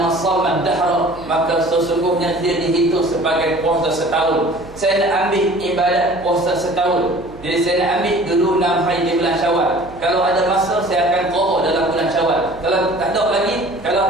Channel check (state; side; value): noise; right; hum, 20 dB below the sound